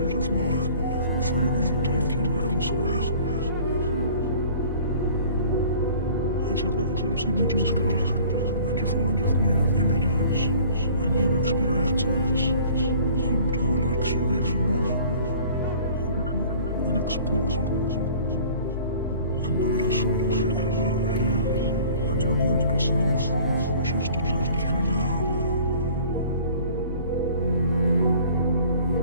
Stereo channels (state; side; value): inverted; both; correlation -0.49